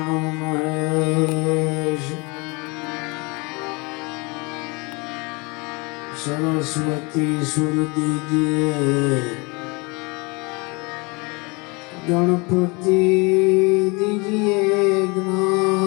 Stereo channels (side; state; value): right; quieter; 28.4 dB